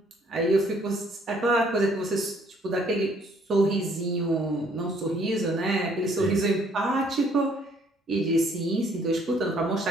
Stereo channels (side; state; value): both; normal; correlation 0.63